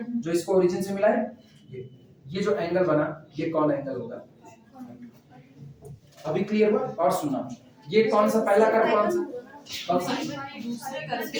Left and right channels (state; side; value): identical; both; correlation 1.00